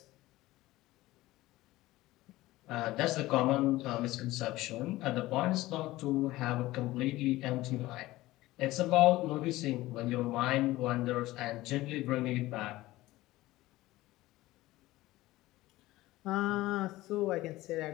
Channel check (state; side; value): quieter; right; 17.7 dB